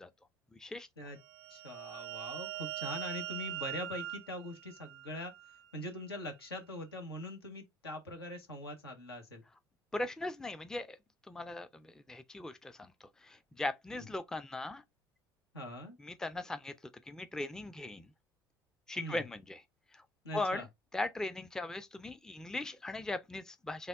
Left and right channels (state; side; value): normal; both; correlation 0.61